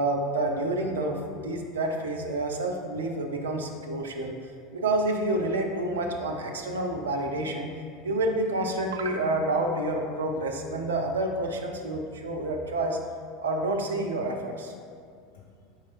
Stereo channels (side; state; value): both; normal; correlation 0.00